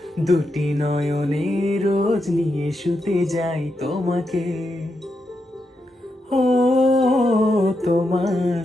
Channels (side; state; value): both; normal; correlation 0.84